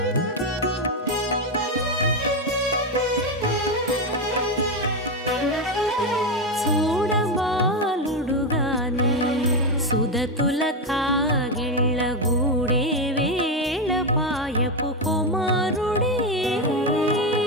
చూడబాలుడుగాని సుదతుల కాగిళ్ళ గూడే వేళ పాయపు కుమారుడే.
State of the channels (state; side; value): normal; both; correlation 0.10